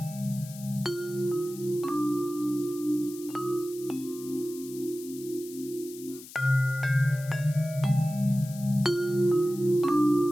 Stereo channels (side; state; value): left; noise; hiss, 17 dB below the sound